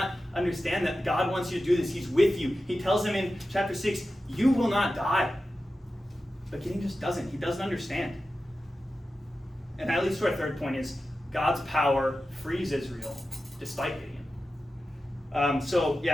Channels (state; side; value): normal; both; correlation 0.93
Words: understand that God wants you to do this? He's with you. He tells him in chapter 6, you will not die. But Gideon just doesn't. He doesn't understand. And that leads to our third point is God's power frees Israel despite Gideon. So